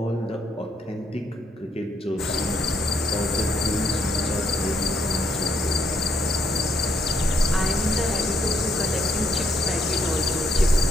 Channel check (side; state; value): both; normal; correlation 0.73